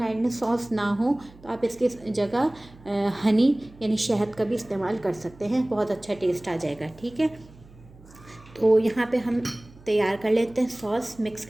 आइलैंड सॉस ना हो तो आप इसके जगह हनी यानी शहद का भी इस्तेमाल कर सकते हैं, बहुत अच्छा टेस्ट आ जाएगा। ठीक है, तो यहाँ पे हम तैयार कर लेते हैं सॉस, मिक्स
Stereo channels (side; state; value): right; noise; hum, 23 dB below the sound